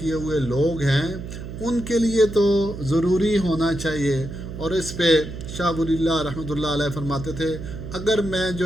ہوئے لوگ ہیں ان کے لیے تو ضروری ہونا چاہیے. اور اس پہ شاہ ولی اللہ رحمۃ اللہ علیہ فرماتے تھے اگر میں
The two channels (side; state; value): right; noise; hum, 9 dB below the sound